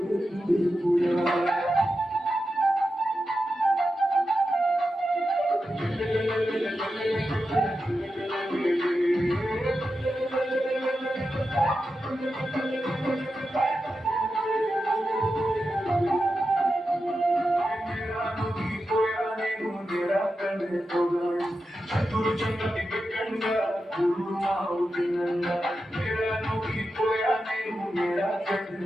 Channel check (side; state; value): both; normal; correlation 0.90